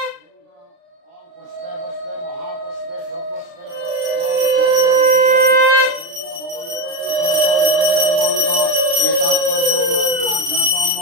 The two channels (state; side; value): late; left; 29 ms